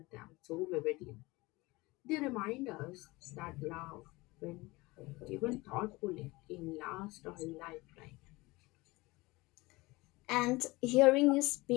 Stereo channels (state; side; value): quieter; right; 22.1 dB